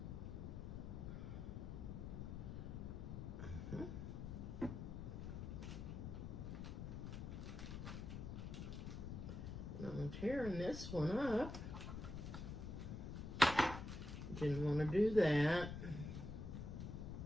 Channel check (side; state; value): left; noise; rumble, 6 dB below the sound